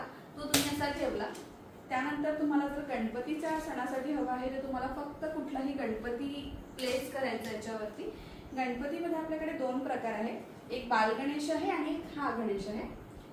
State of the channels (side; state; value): both; identical; correlation 1.00